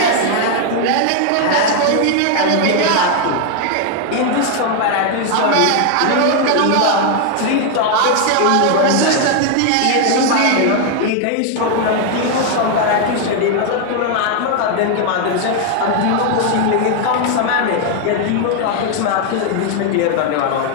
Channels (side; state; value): both; different; correlation 0.00